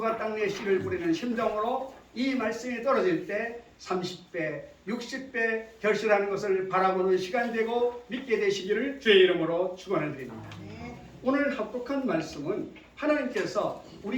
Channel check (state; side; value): identical; both; correlation 1.00